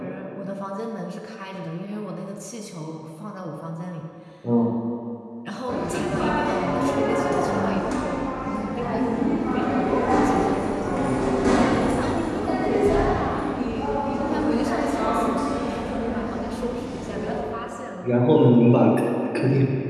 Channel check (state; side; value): identical; both; correlation 1.00